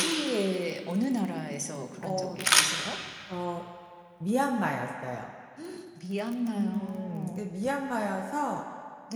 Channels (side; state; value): both; identical; correlation 1.00